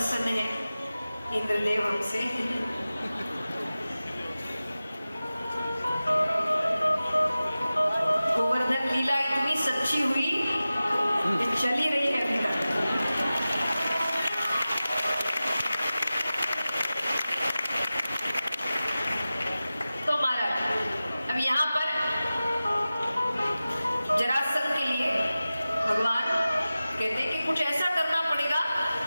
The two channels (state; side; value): inverted; both; correlation -0.96